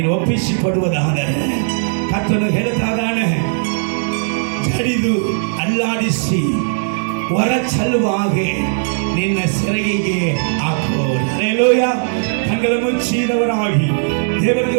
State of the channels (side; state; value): left; silent; digital silence